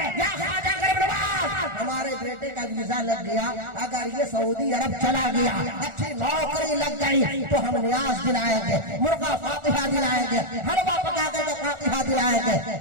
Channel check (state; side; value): late; left; 1.4 ms